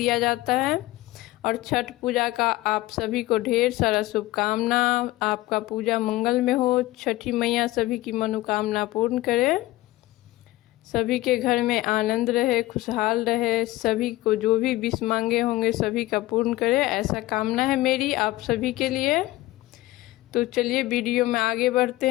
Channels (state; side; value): quieter; right; 17.8 dB